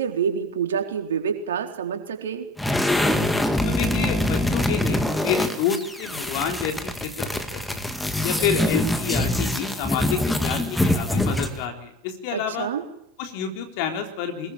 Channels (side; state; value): both; normal; correlation 0.50